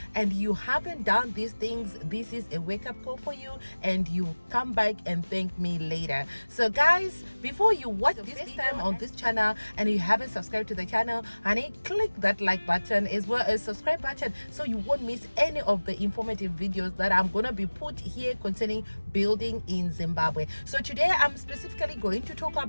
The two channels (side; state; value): both; inverted; correlation -1.00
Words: and you haven't done these things, this is a wake-up call for you and you come back and thank me later. So guys, before you watch this time on this channel and you haven't subscribed to the channel, honey, click that like button as well as subscribe button so you won't miss any of the informative videos that I'm gonna be put here concerning building in Zimbabwe. So today I'm specifically going to talk